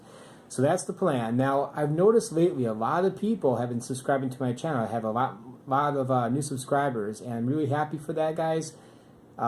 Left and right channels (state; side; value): identical; both; correlation 1.00